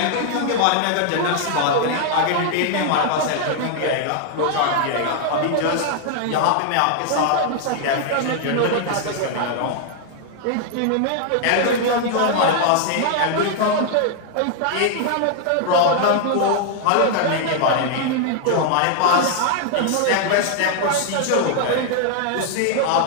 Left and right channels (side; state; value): both; different; correlation 0.00